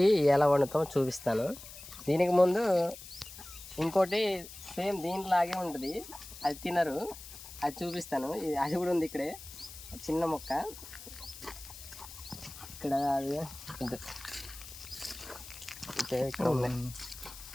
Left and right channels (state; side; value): noise; left; hiss, 14 dB below the sound